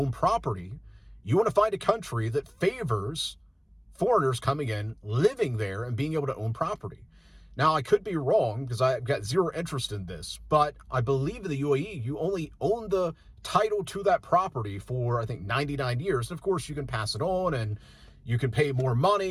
property, you want to find a country that favors foreigners coming in, living there, and being able to own property. Now, I could be wrong because I've got zero interest in this, but I believe in the UAE, you only own the title to that property for, I think, 99 years. And of course, you can pass it on and you can pay more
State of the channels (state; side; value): identical; both; correlation 1.00